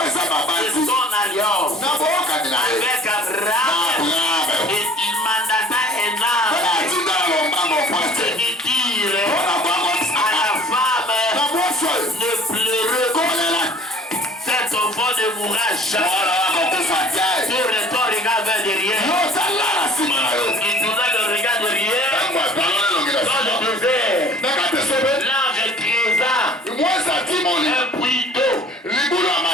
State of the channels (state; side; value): normal; both; correlation 0.51